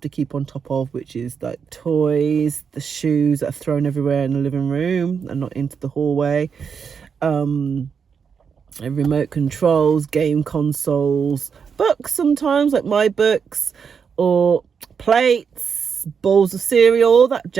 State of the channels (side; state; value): left; quieter; 6.4 dB